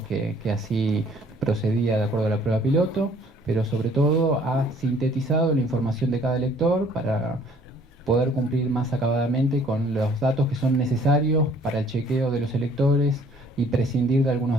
que así procedía de acuerdo a la prueba piloto, pero sobre todo ha sintetizado la información de cada elector para poder cumplir más acabadamente con los datos que son necesarios para el chequeo de los electores y prescindir de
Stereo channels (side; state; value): both; normal; correlation 0.58